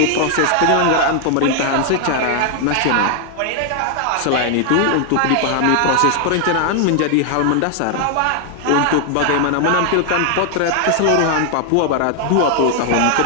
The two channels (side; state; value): both; different; correlation 0.00